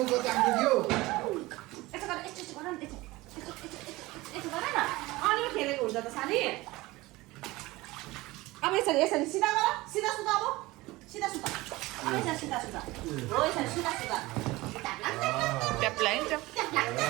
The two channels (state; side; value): quieter; left; 20.2 dB